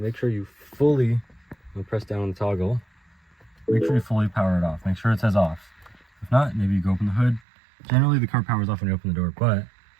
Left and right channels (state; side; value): drops out; left; at 7.4 s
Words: sure you fully press down on the toggle. Make sure you fully power it off. Make sure it says off. If not, maybe you go open the hood. Generally the car powers off when you open the door, but